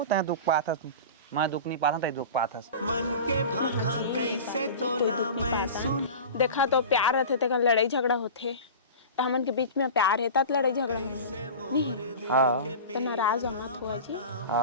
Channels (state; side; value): inverted; both; correlation -0.33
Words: ता दुख पाता तू मैं दुख नहीं पाता ता दुख पाता मन के भाखा कैसे तोला मैं सुन देखा तो प्यार रहते थे लड़ाई झगड़ा होते तो हमन के बीच में प्यार है तब लड़ाई झगड़ा नहीं हां तो नाराज मत हो जी